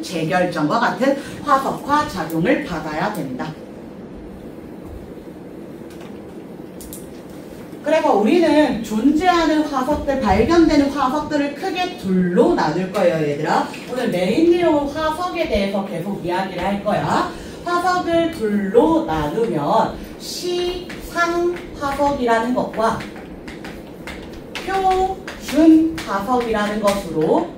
재결정과 같은 화석화 작용을 받아야 된다. 그래서 우리는 존재하는 화석들, 발견되는 화석들을 크게 둘로 나눌 거예요, 얘들아. 오늘 메인 내용은 화석에 대해서 계속 이야기를 할 거야. 화석을 둘로 나누면 시상화석이라는 것과 표준화석이라는 것으로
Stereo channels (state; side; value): identical; both; correlation 1.00